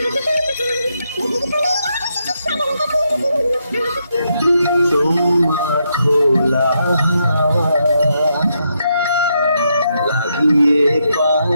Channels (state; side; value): inverted; both; correlation -0.80